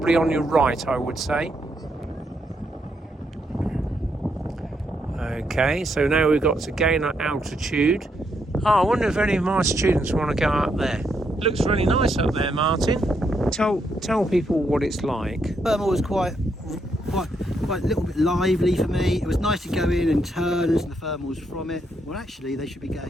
on your right I would say. Okay, so now we've got to gain our altitude. Oh, I wonder if any of my students want to go up there. It looks really nice up there, Martin. Tell people what it's like. Thermal was quite a little bit lively for me. It was nice to go in and turn as the thermals from it. Well, actually, they should be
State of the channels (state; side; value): normal; both; correlation 0.78